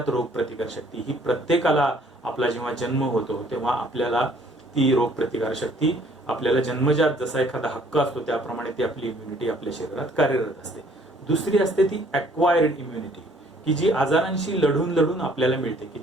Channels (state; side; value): normal; both; correlation 0.59